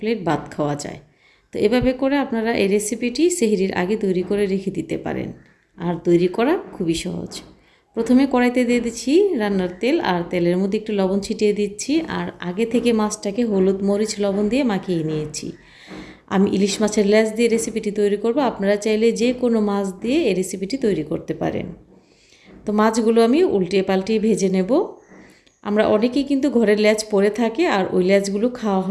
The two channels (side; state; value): both; identical; correlation 1.00